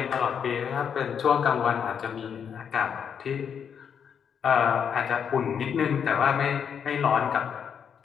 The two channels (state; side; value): quieter; right; 7.5 dB